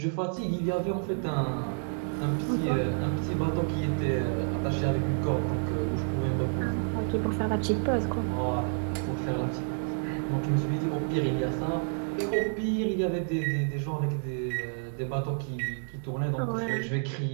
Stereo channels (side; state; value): left; silent; 58 dB below the other